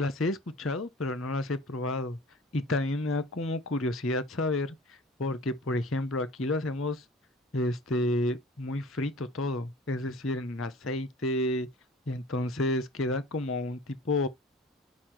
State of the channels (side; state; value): both; normal; correlation 0.43